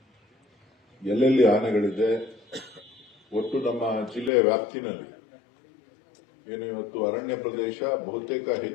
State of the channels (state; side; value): drops out; right; at 4.3 s